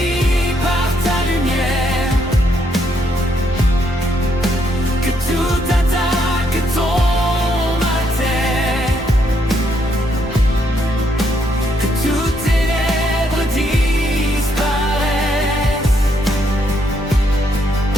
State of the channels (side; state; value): both; normal; correlation 0.74